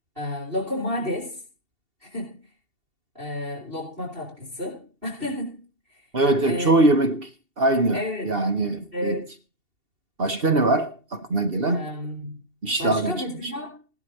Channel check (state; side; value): late; left; 2.7 ms